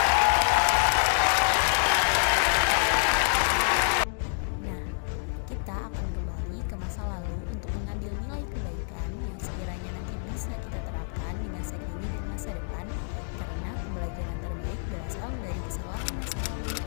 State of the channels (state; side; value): silent; right; 59 dB below the other